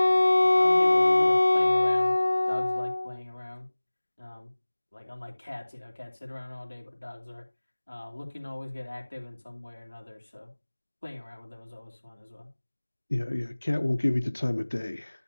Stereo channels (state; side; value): inverted; both; correlation -1.00